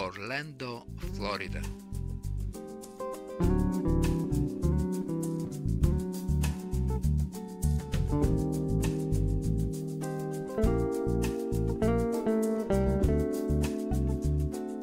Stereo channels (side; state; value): both; identical; correlation 1.00